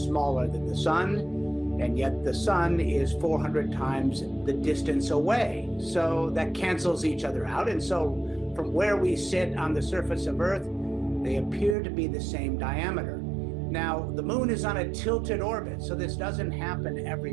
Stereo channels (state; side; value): drops out; left; at 11.8 s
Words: smaller than the sun, and yet the sun is 400 times the distance away. So that cancels each other out. And so from where we sit on the surface of Earth, they appear to be the same diameter. Now, the moon is on a tilted orbit, so this doesn't happen